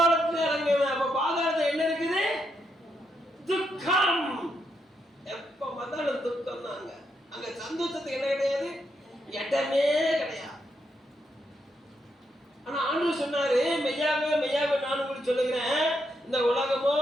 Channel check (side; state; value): both; normal; correlation 0.80